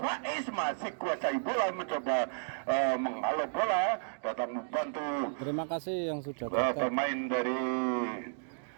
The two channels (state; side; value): silent; left; digital silence